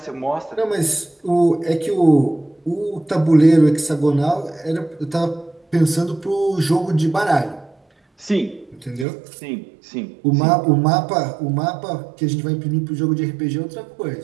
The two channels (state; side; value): drops out; left; at 9.1 s